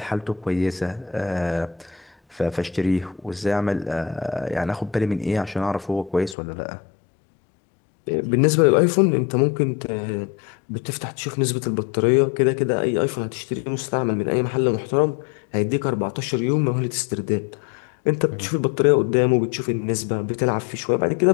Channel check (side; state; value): right; drops out; at 6.4 s